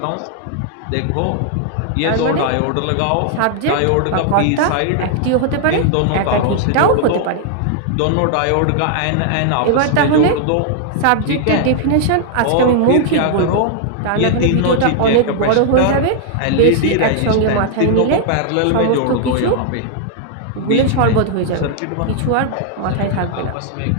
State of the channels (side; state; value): both; different; correlation 0.00